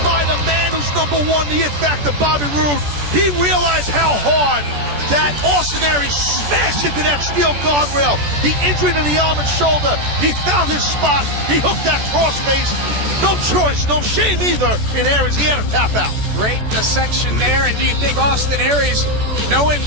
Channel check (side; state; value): left; late; 14 ms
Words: by the man who's #1, the It Factor, Bobby Roode. He realized how hard that Austin Aries smashed into that steel guardrail. The injury to the arm and shoulder. He found his spot. He hooked that crossface. No choice, no shame either in Aries. He had to tap out. Great dissection there. And do you think Austin Aries, knowing